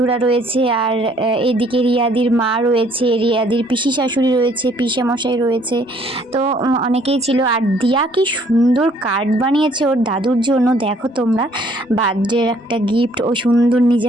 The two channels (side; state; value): both; normal; correlation 0.62